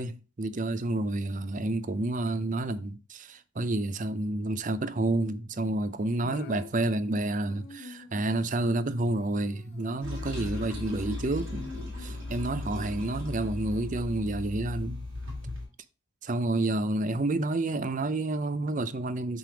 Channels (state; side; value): normal; both; correlation 0.67